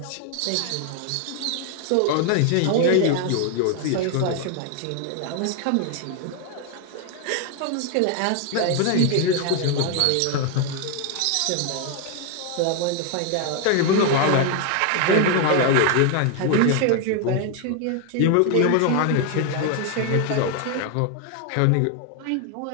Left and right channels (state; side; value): different; both; correlation 0.01